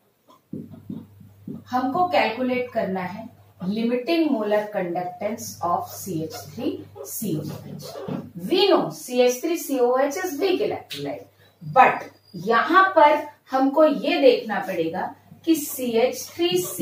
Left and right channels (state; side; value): identical; both; correlation 1.00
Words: हमको कैलकुलेट करना है limiting molar conductance of CH3COOH. We know CH3COOH is weak electrolyte, but यहां पर हमको ये देखना पड़ेगा कि